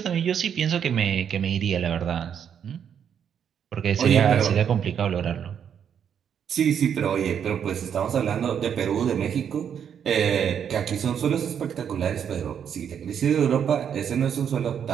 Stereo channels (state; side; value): quieter; left; 8.2 dB